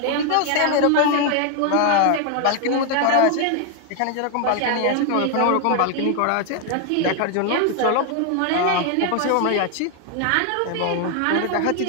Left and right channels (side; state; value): both; different; correlation 0.00